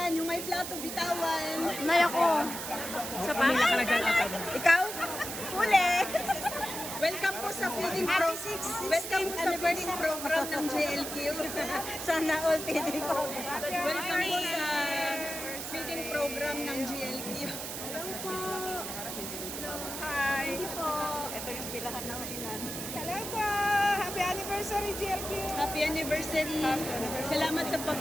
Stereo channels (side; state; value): right; noise; hiss, 6 dB below the sound